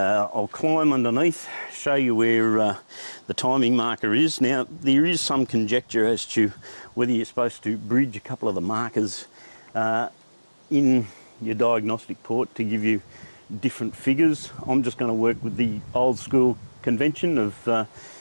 climb underneath, show you where the timing marker is. Now there is some conjecture as to whether you're supposed to bridge a couple of the markers in your diagnostic port to give you different figures. I'm just going to work with the old school convention of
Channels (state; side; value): inverted; both; correlation -1.00